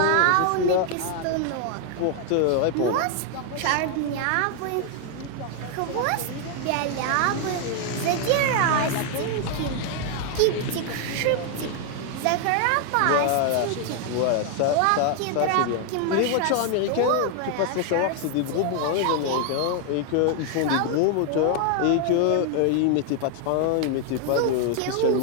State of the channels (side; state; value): both; different; correlation 0.00